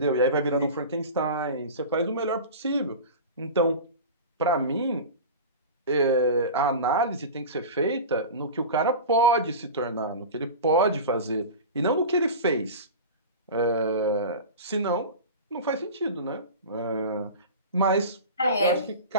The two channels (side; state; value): both; inverted; correlation -0.30